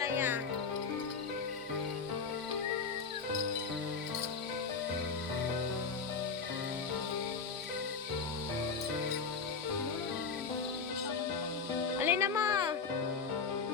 Alin na mo?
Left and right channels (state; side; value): quieter; right; 5.2 dB